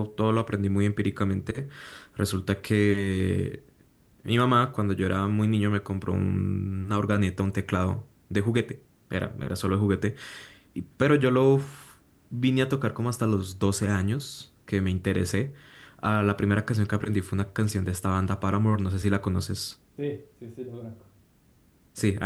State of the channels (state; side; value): identical; both; correlation 1.00